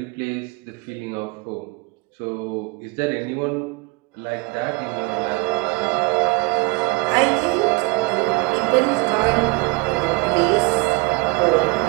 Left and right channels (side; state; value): left; quieter; 25.6 dB